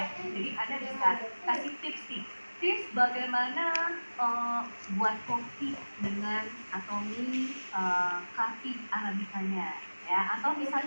Jadi Anda bisa kasih tips nih. Tips bagaimana buat kopi dengan Atomi coffee arabicanya, ya. Atau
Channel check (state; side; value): inverted; both; correlation -1.00